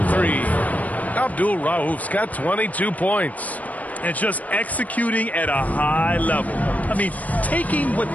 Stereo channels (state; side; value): late; right; 0.073 ms